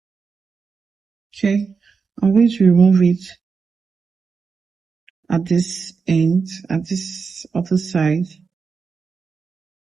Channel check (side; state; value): left; quieter; 5.2 dB